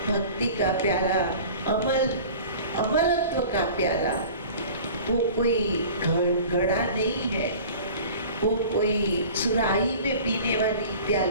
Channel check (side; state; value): both; inverted; correlation -0.41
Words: भक्ति का प्याला, अमरत्व का प्याला। वो कोई घड़ा नहीं है, वो कोई सुराही में पीने वाली